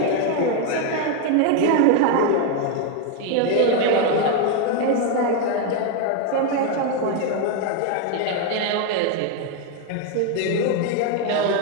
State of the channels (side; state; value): both; different; correlation 0.01